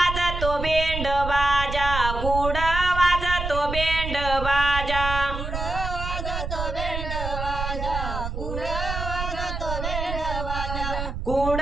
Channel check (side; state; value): right; noise; rumble, 5 dB below the sound